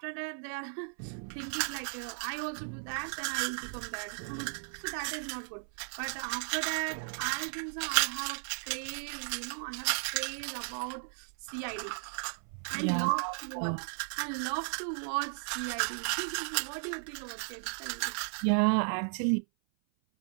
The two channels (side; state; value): left; silent; 54 dB below the other